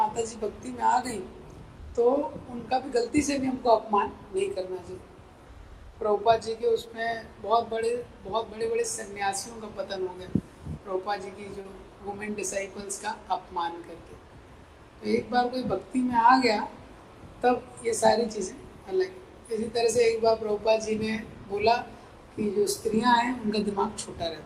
जी भक्ति में आ गई तो उनका भी गलती से भी हमको अपमान नहीं करना चाहिए। प्रभुपाद जी के उसमें बहुत बड़े बड़े सन्यासियों का पतन हो गया, प्रभुपाद जी की जो वुमेन डिसाइपल्स का अपमान करके। तो एक बार कोई भक्ति में आ गया तब ये सारी चीज़ें अलग। इसी तरह से एक बार प्रभुपाद जी ने बोला कि जो स्त्रियां हैं उनका दिमाग छोटा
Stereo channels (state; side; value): identical; both; correlation 1.00